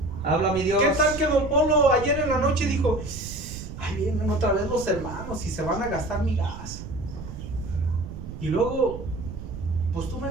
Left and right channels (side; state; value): right; noise; rumble, 10 dB below the sound